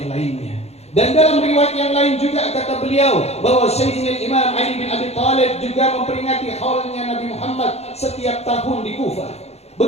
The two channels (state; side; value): late; right; 0.31 ms